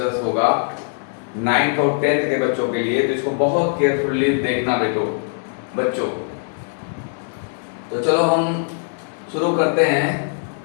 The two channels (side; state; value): right; silent; 65 dB below the other